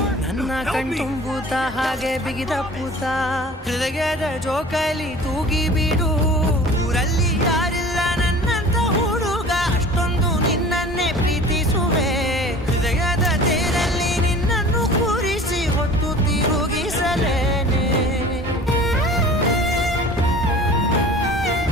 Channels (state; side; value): normal; both; correlation 0.43